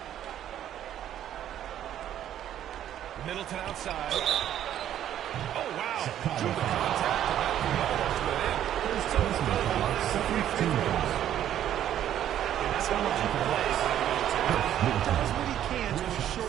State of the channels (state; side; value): quieter; left; 11.0 dB